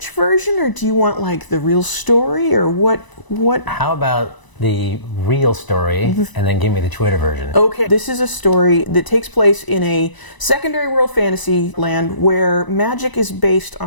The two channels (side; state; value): right; late; 1.0 ms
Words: version, or do you want like the real story, or what? How about the real story, and then give me the Twitter version? Okay, this is a story that takes place in a secondary world fantasy land where magic is based